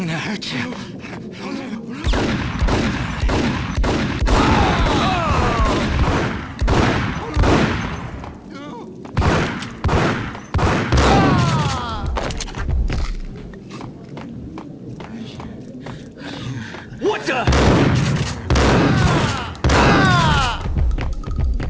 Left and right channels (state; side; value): identical; both; correlation 1.00